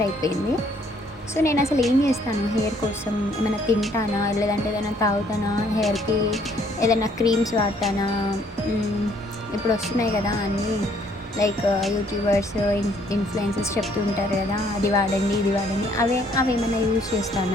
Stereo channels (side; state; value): both; normal; correlation 0.64